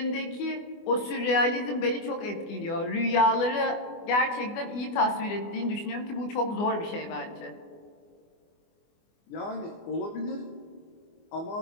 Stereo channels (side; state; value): right; late; 24 ms